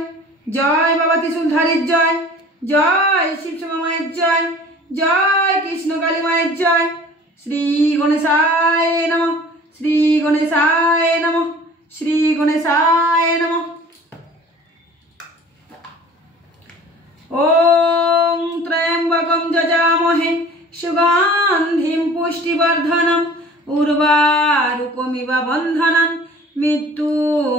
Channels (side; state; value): both; normal; correlation 0.46